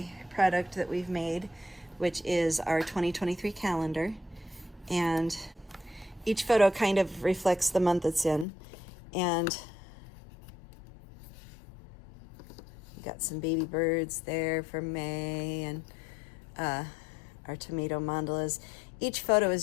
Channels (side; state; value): right; drops out; at 8.5 s